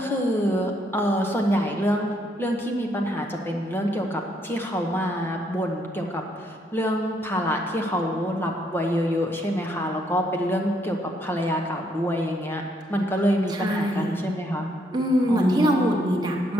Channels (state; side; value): normal; both; correlation 0.72